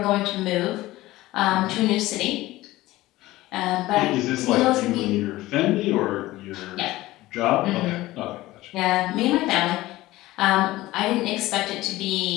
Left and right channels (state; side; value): quieter; right; 17.6 dB